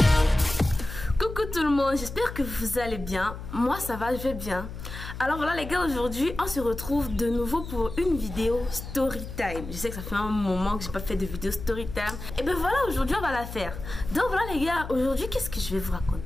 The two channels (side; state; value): left; noise; hum, 10 dB below the sound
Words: Tout le monde, j'espère que vous allez bien. Moi ça va, je vais bien. Alors voilà les gars, aujourd'hui on se retrouve de nouveau pour une vidéo story time. Je sais que ça fait un moment que j'ai pas fait de vidéo story time. Et ben voilà, aujourd'hui on va la faire. Donc voilà les gars, aujourd'hui qu'est-ce que je vais vous